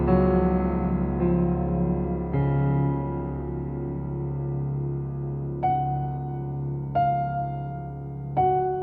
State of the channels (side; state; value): both; identical; correlation 1.00